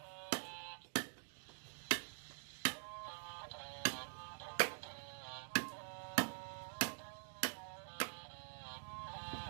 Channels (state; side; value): silent; left; digital silence